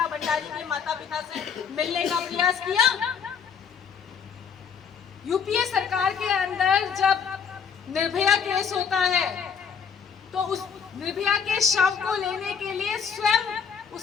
भंडारी के माता पिता से मिलने का प्रयास किया? यूपीए सरकार के अंदर जब निर्भया केस होता है तो उस निर्भया के शव को लेने के लिए स्वयं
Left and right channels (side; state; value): right; quieter; 6.7 dB